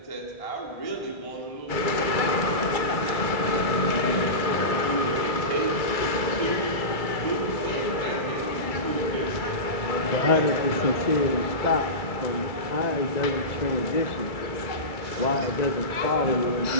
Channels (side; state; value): right; late; 2.3 ms